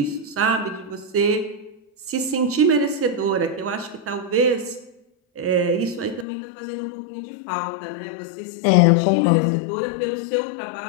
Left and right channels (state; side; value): drops out; right; at 6.2 s